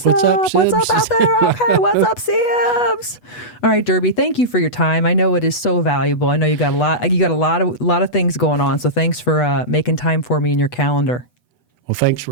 up? Sibs? What's up out there? Okay, what's up, Sibs? All right, Durbie, thank you for your time. I know it is so valuable. I know you got a lot of things going on. So thanks for making time for me in your calendar. Well, thanks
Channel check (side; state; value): right; late; 8.1 ms